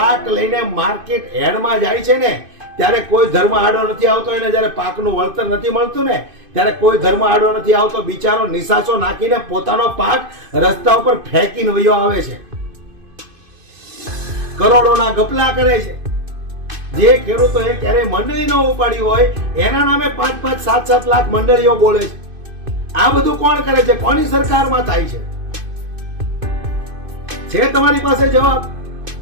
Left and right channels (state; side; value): late; left; 2.5 ms